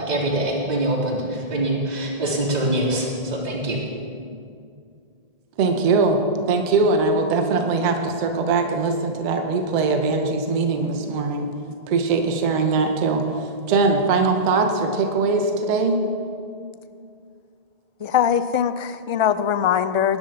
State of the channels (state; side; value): late; left; 1.7 ms